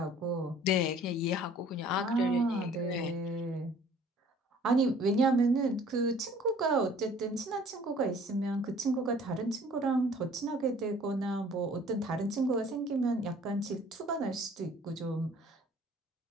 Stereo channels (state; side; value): normal; both; correlation 0.53